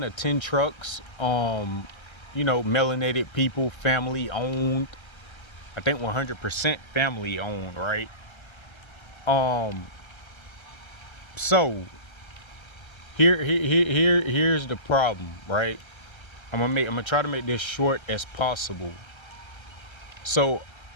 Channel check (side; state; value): right; late; 1.3 ms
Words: or 10 trucks. Melanated people, family owned. I think 100% family owned, right? Um, so here's the problem, right? I'm gonna try to make this short as possible. So